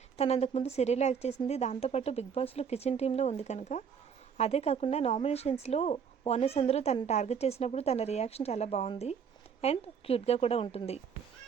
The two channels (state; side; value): quieter; left; 7.0 dB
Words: తను అంతకుముందు సీరియల్ యాక్ట్ చేసింది. దాంతోపాటు బిగ్ బాస్లో కిచెన్ టీంలో ఉంది కనుక. అదే కాకుండా నామినేషన్స్లో ఓనర్స్ అందరూ తను టార్గెట్ చేసినప్పుడు తన రియాక్షన్ చాలా బాగుంది అండ్ క్యూట్గా కూడా ఉంటుంది.